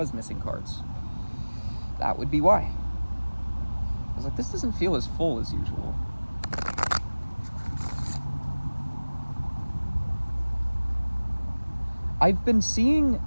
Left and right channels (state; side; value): inverted; both; correlation -1.00